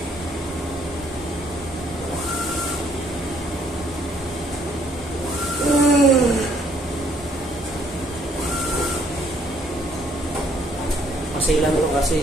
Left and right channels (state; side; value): normal; both; correlation 0.65